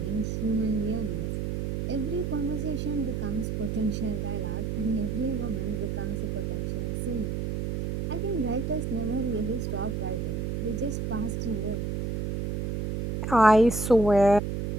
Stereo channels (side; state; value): right; noise; hum, 1 dB below the sound